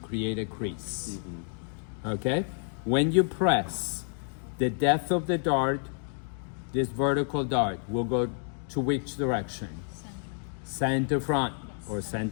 a crease. Okay? When you press, the depth of the dart, this vertical dart, will go to which direction? Center front or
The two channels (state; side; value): silent; right; 58 dB below the other